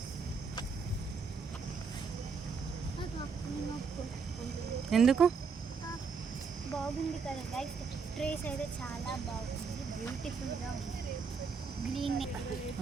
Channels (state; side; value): quieter; left; 5.3 dB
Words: ఎందుకు బాగుంది కదా గైస్. ట్రీస్ అయితే చాలా బాగుంది, బ్యూటిఫుల్గా ఉంది. గ్రీన్